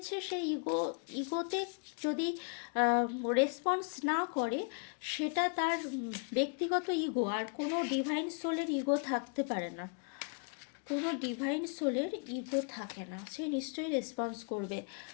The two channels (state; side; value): quieter; right; 38.9 dB